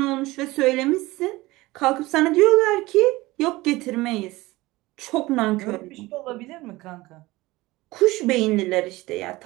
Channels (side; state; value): left; quieter; 19.9 dB